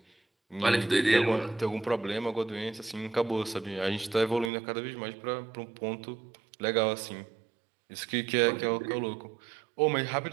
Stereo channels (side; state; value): left; drops out; at 4.5 s